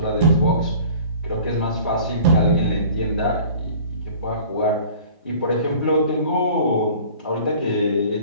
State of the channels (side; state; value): both; inverted; correlation -0.46